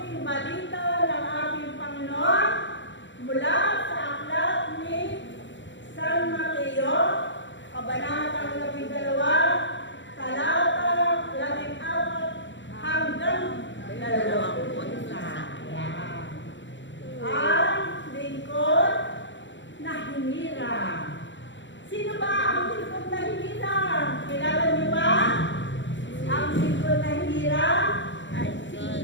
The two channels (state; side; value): late; right; 0.54 ms